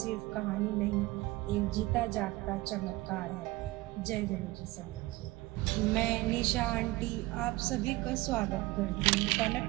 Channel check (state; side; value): quieter; left; 20.0 dB